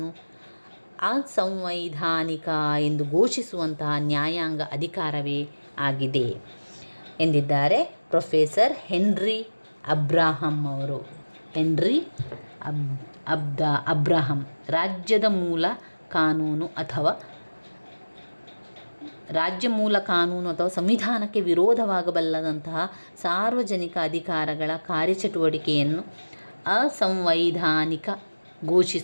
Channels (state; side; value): inverted; both; correlation -1.00